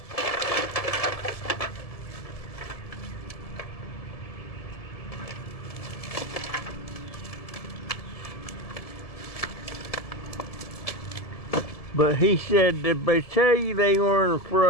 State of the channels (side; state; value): right; late; 1.7 ms